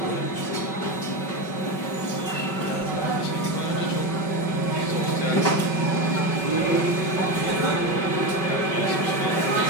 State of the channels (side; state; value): right; late; 5.3 ms